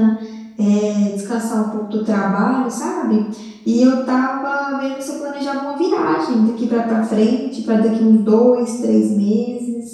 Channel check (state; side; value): identical; both; correlation 1.00